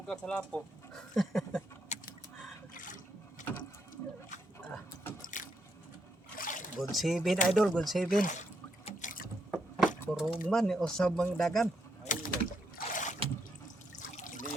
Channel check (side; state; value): both; normal; correlation 0.78